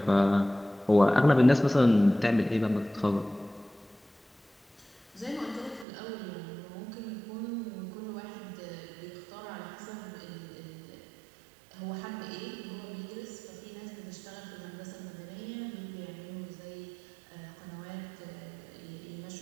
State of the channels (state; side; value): drops out; left; at 5.9 s